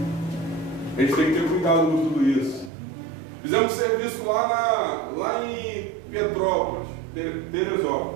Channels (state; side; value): drops out; left; at 2.7 s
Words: A gente tem que ter cuidado com tudo isso. Fizemos serviço lá em Petrópolis,